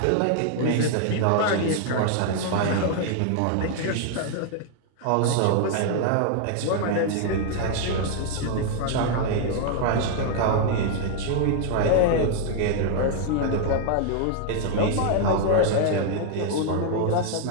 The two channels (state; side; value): different; both; correlation 0.00